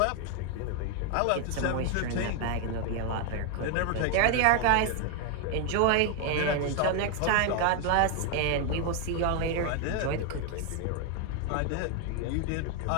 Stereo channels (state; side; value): different; both; correlation 0.00